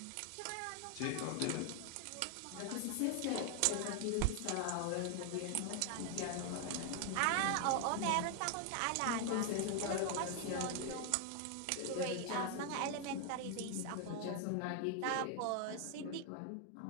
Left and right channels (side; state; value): both; different; correlation 0.00